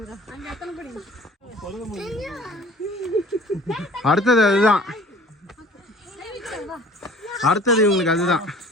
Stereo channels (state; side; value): normal; both; correlation 0.48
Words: அடுத்தது அதுதான். அடுத்தது இவங்களுக்கு அதுதான்.